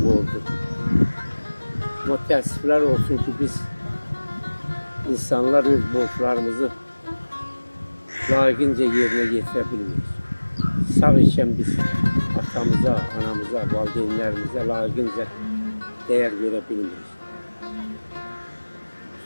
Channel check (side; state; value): both; inverted; correlation -1.00